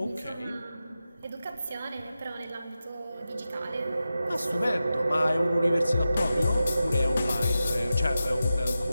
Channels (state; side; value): inverted; both; correlation -0.92